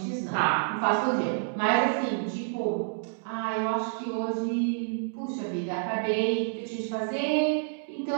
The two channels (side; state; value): left; silent; digital silence